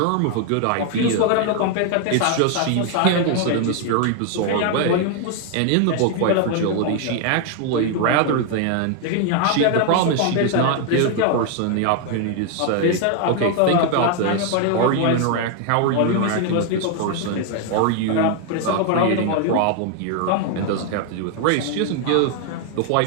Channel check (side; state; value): both; different; correlation 0.00